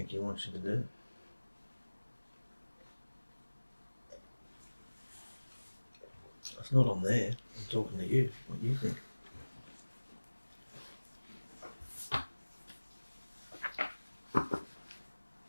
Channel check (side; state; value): both; inverted; correlation -1.00